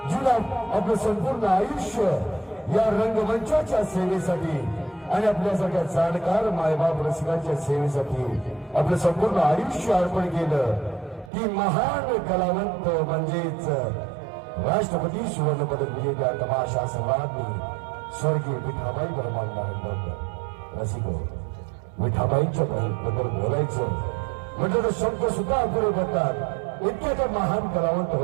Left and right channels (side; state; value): left; drops out; at 11.3 s